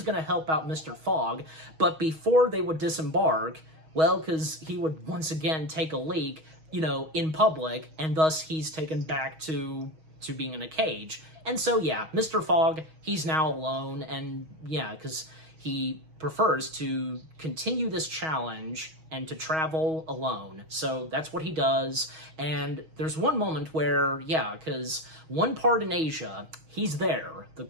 help out Mr. Fogg, but before they would disembark, because he would once again take a leak, in public, and thus he's taken back to being in a cage. And so yeah, Mr. Fogg, he's now alone, and yeah, because he prefers to continue this challenge and to travel alone. So that's what he does. And there's one moment where, because one part in Asia, he's there, the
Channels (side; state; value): left; late; 6.3 ms